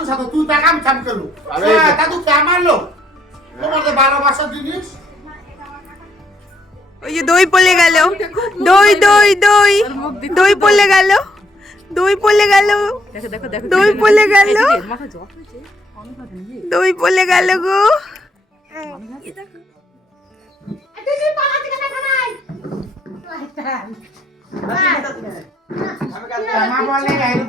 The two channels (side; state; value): both; normal; correlation 0.71